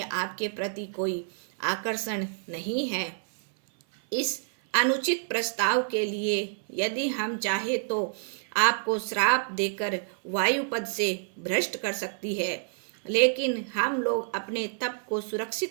आपके प्रति कोई आकर्षण नहीं है। इस अनुचित प्रस्ताव के लिए यदि हम चाहे तो आपको श्राप देकर वायुपद से भ्रष्ट कर सकती है, लेकिन हम लोग अपने तप को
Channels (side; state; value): left; silent; 59 dB below the other